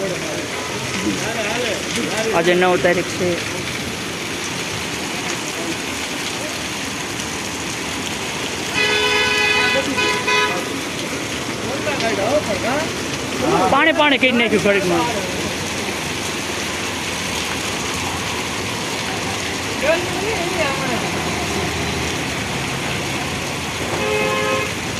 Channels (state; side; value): identical; both; correlation 1.00